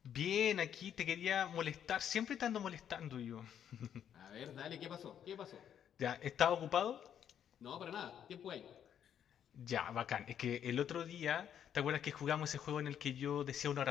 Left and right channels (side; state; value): right; quieter; 9.3 dB